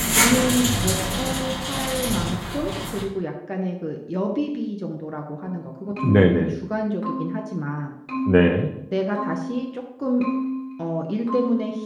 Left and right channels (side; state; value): both; identical; correlation 1.00